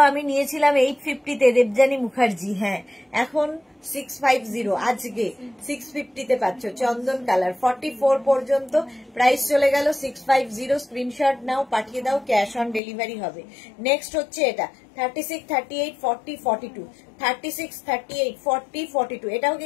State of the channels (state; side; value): drops out; right; at 12.8 s